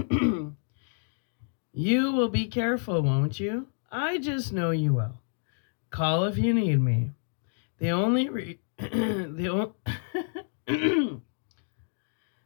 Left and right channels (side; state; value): right; silent; digital silence